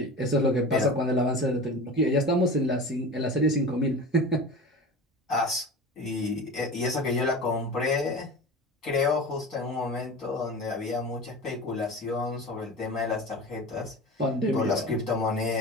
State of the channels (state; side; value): normal; both; correlation 0.32